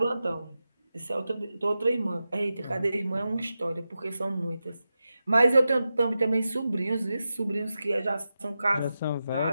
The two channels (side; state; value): both; inverted; correlation -0.92